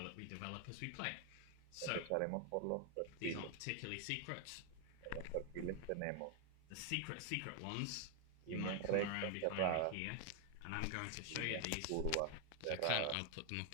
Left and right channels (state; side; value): different; both; correlation 0.00